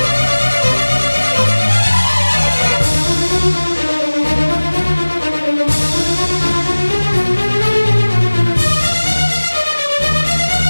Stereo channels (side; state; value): both; inverted; correlation -1.00